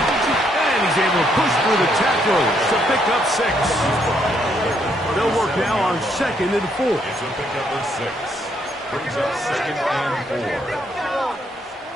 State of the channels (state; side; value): normal; both; correlation 0.72